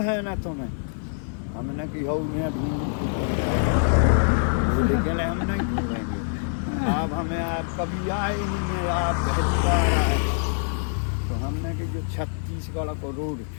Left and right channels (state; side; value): silent; right; digital silence